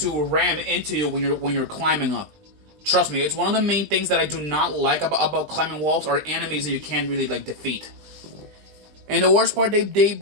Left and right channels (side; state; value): left; late; 19 ms